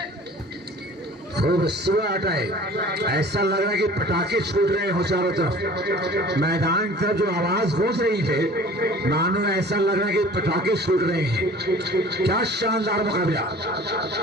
खूब सुबह है ऐसा लग रहा है कि पटाखे छूट रहे हो चारों तरफ मैदान की तरफ जो आवाज गूंज रही है मानो ऐसा लग रहा है कि पटाखे छूट रहे हैं। क्या शानदार मुकाबला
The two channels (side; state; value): both; normal; correlation 0.46